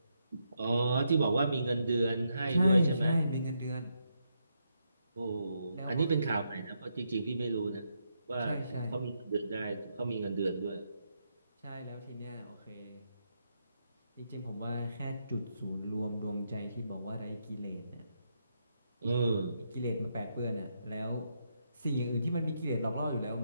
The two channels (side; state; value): both; inverted; correlation -0.80